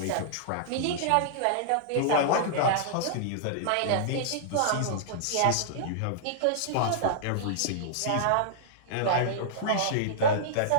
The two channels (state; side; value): different; both; correlation -0.02